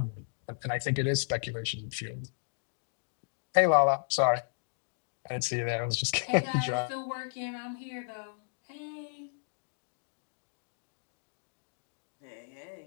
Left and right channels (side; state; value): right; silent; digital silence